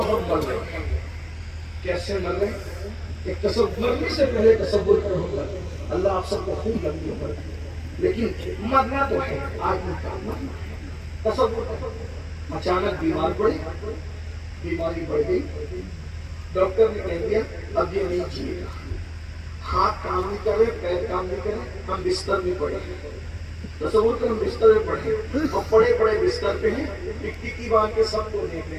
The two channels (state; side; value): identical; both; correlation 1.00